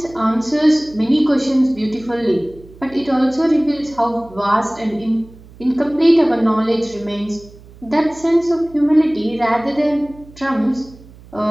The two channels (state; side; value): noise; right; hum, 22 dB below the sound